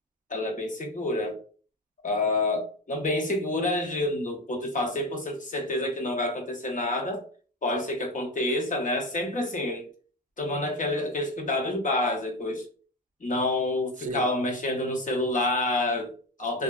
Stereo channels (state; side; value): normal; both; correlation 0.20